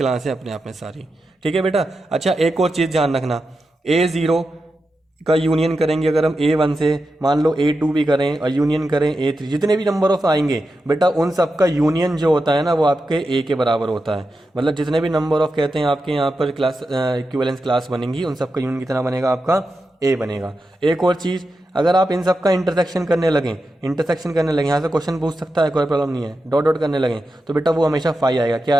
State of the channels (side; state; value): both; normal; correlation 0.89